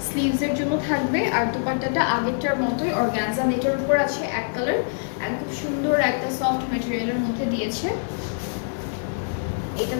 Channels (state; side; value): silent; right; digital silence